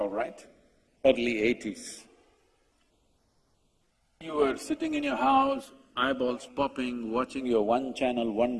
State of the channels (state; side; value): identical; both; correlation 1.00